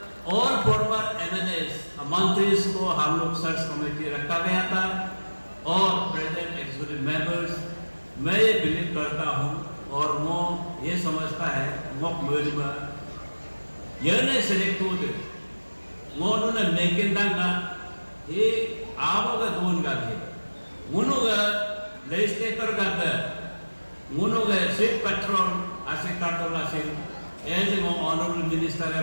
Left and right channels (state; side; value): inverted; both; correlation -1.00